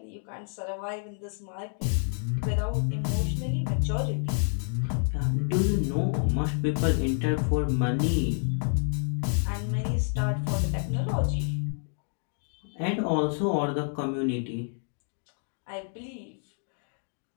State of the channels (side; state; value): right; silent; 59 dB below the other